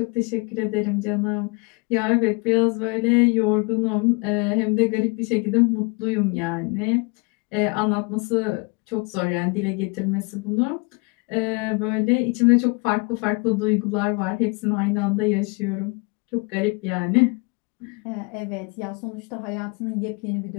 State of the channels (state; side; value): quieter; right; 30.3 dB